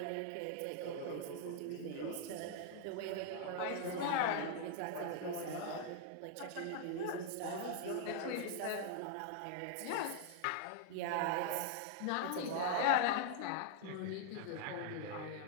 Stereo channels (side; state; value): both; different; correlation 0.00